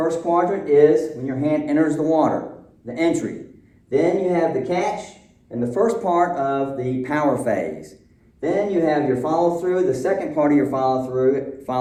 quadrant is when your hand enters the water, the entry. Then you have the catch and the first part of the power phase. Then you have your follow-through, the second part of your follow-through,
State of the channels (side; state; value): both; identical; correlation 1.00